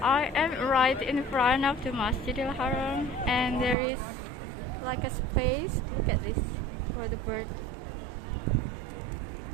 I am right in front of the Masjidil Haram and there is like a space, look at this, for the bird.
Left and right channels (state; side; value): drops out; left; at 3.8 s